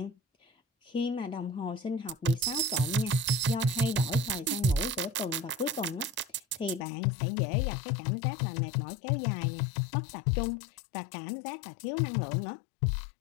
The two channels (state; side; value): drops out; right; at 6.9 s